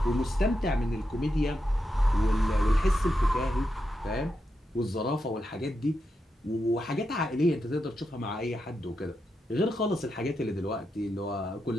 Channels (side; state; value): both; normal; correlation 0.86